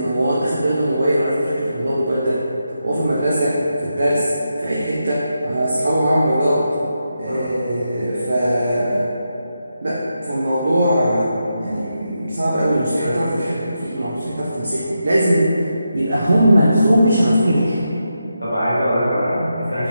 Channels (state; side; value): inverted; both; correlation -0.86